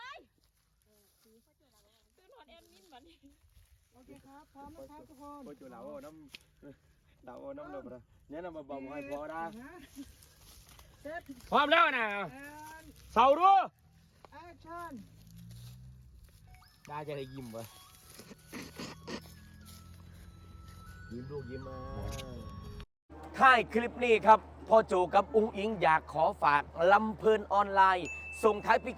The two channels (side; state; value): both; identical; correlation 1.00